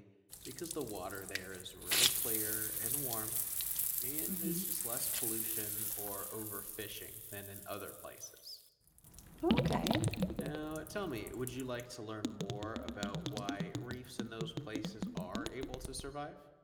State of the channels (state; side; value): identical; both; correlation 1.00